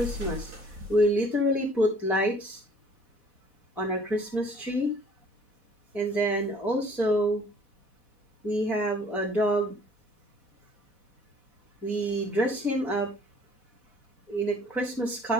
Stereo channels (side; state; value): left; late; 4.1 ms